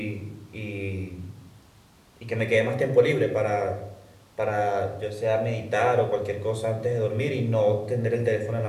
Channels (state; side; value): identical; both; correlation 1.00